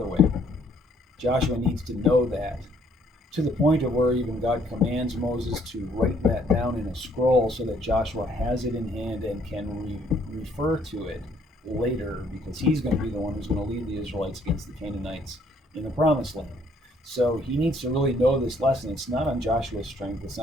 way. Joshua needs to know that, to the point of where even God commands Moses to write that down in a scroll so that Joshua has it in hand and can refer to it later, because he's going to be the one who's going to lead the Israelites against the Canaanites in the Promised Land. So he needs to really know this lesson. It's not on Joshua's strength. It's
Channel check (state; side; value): normal; both; correlation 0.65